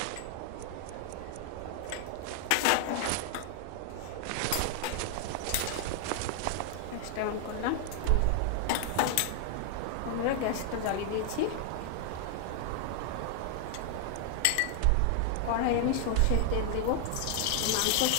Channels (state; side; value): different; both; correlation 0.00